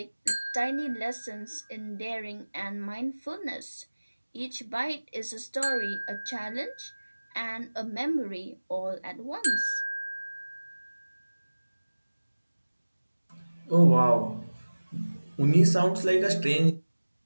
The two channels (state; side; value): inverted; both; correlation -1.00